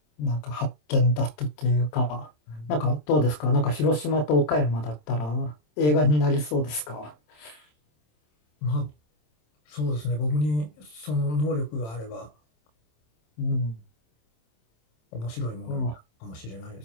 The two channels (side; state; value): right; late; 27 ms